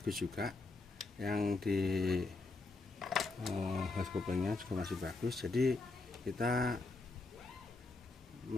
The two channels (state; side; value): quieter; right; 3.5 dB